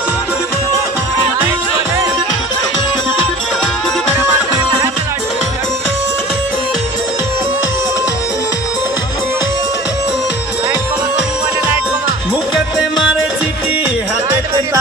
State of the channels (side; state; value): both; normal; correlation 0.42